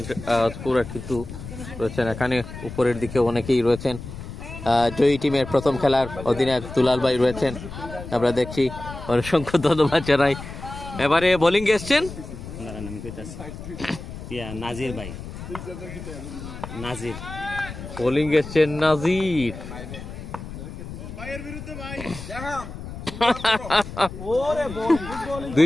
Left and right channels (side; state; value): left; noise; rumble, 11 dB below the sound